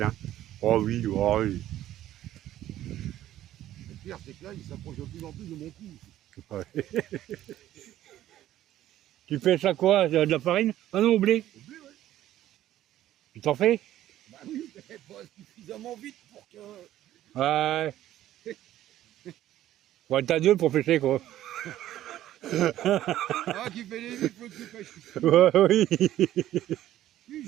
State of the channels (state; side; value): quieter; left; 13.2 dB